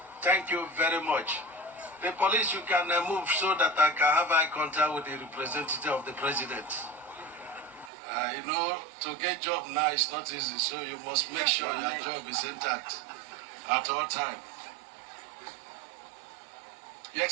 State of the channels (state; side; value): drops out; left; at 7.9 s